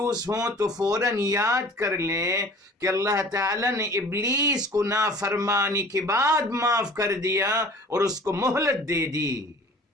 ہوں تو فوراً یاد کر لیں کہ اللہ تعالیٰ نے ابلیس کو نافرمانی کے بعد معاف کر دیا اور اس کو مہلت دے دی.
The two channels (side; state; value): both; normal; correlation 0.46